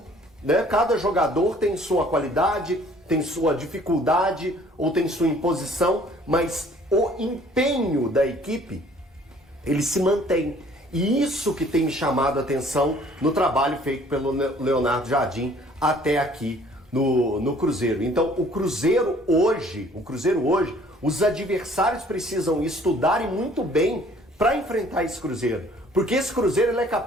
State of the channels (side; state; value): both; normal; correlation 0.56